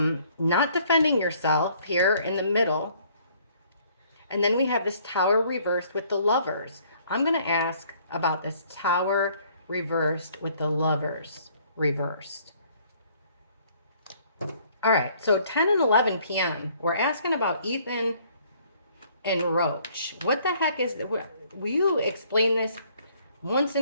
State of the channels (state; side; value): inverted; both; correlation -0.61